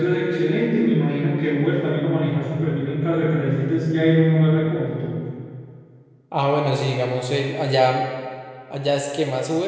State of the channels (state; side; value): identical; both; correlation 1.00